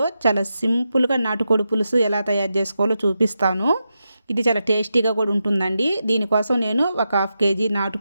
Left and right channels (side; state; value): both; inverted; correlation -0.88